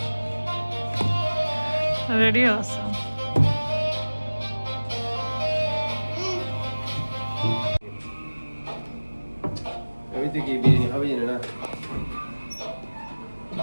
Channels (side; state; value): both; inverted; correlation -1.00